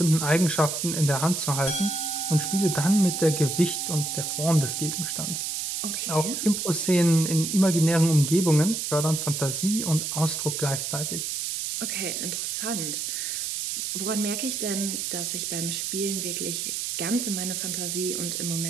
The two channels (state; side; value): noise; right; hiss, 3 dB below the sound